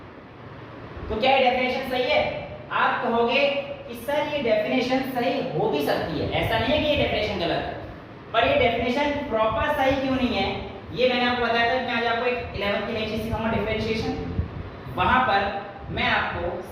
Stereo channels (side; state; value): both; identical; correlation 1.00